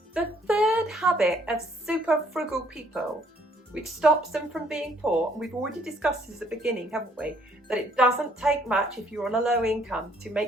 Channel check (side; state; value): both; normal; correlation 0.65